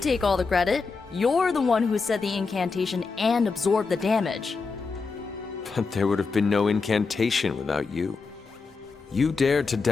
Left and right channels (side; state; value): right; quieter; 4.6 dB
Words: take all the credit. You're the one who said the incantation and absorbed the damage. But there would have been no incantation without you. You dared to